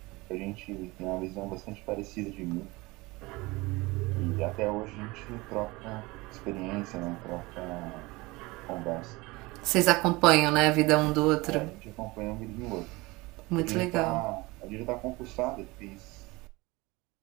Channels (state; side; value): quieter; left; 22.8 dB